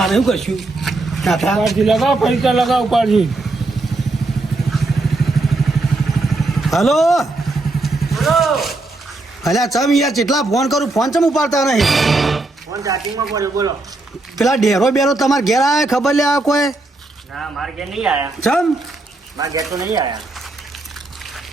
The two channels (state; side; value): quieter; left; 3.1 dB